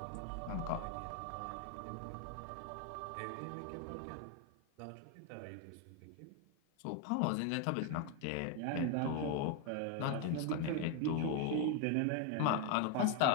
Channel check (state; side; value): different; both; correlation 0.01